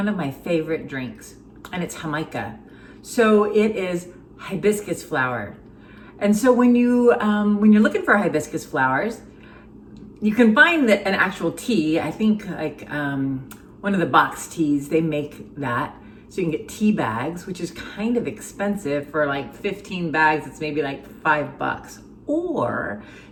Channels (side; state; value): both; identical; correlation 1.00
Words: of my favorite drinks, and it's Jamaica. So it is hibiscus flower. And so when you're looking for hibiscus flowers, you can find an actual tea. I think like one of the box teas, they make that. So you can get tea bags, which is kind of expensive. For like 15 bags, it's maybe like $5. Or